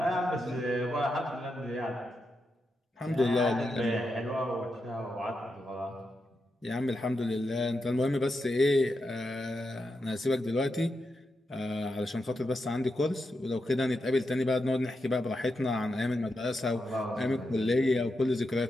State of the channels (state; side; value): normal; both; correlation 0.86